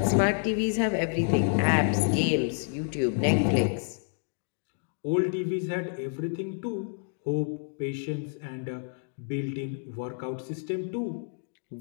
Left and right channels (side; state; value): right; silent; digital silence